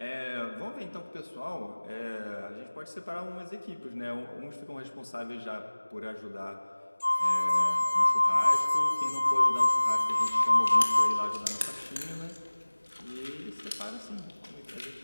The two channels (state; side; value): inverted; both; correlation -1.00